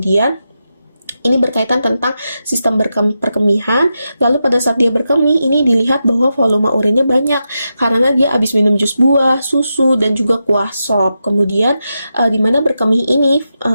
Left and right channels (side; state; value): both; inverted; correlation -0.88